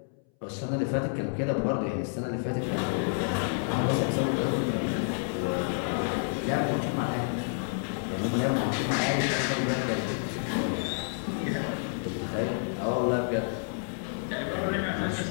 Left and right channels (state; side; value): silent; right; 58 dB below the other